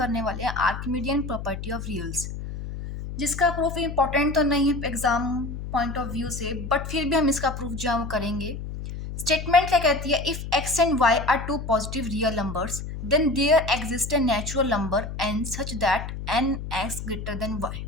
वाले हैं आर्किमिडियन प्रॉपर्टी ऑफ रियल्स, जिसका प्रूफ इम्पोर्टेंट तो नहीं है एग्जाम पॉइंट ऑफ व्यू से, बट फिर भी हम इसका प्रूफ जो है वो करेंगे। स्टेटमेंट क्या कहती है? If x and Y are two positive real numbers then there exist a natural number N such that N x greater than Y.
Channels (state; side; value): noise; left; hum, 7 dB below the sound